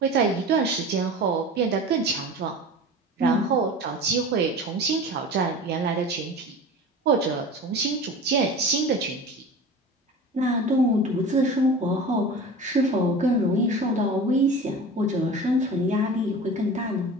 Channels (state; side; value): normal; both; correlation 0.35